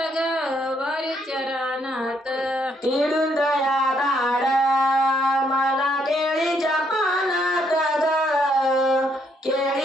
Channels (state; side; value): normal; both; correlation 0.72